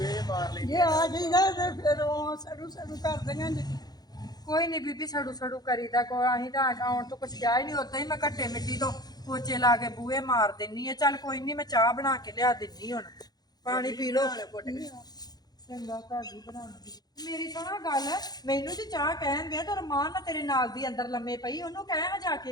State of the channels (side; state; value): right; late; 0.19 ms